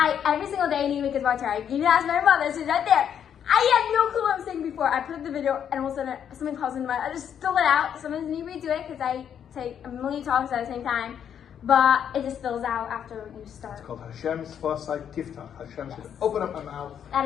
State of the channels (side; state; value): right; quieter; 8.7 dB